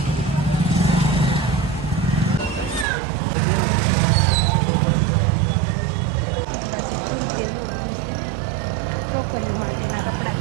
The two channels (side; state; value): left; drops out; at 2.9 s